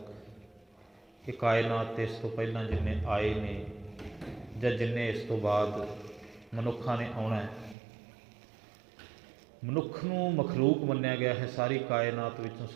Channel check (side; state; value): left; drops out; at 7.8 s